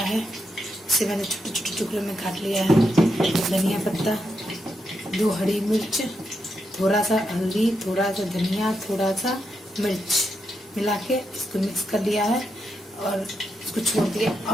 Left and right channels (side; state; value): both; normal; correlation 0.83